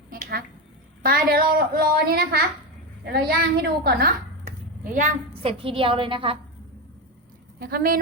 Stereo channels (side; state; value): both; normal; correlation 0.13